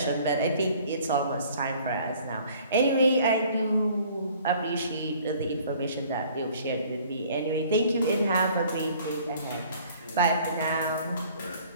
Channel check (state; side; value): inverted; both; correlation -0.54